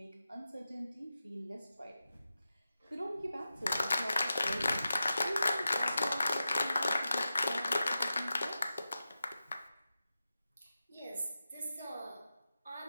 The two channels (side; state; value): both; inverted; correlation -0.92